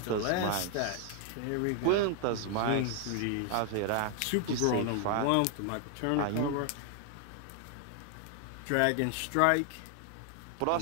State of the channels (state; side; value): different; both; correlation 0.00